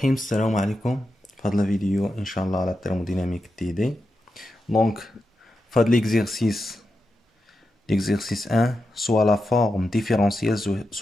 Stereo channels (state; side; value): normal; both; correlation 0.88